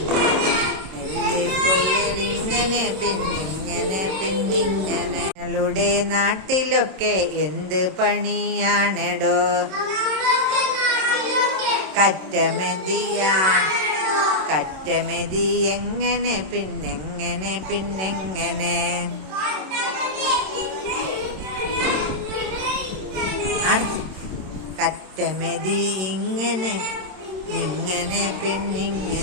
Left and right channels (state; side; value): late; left; 27 ms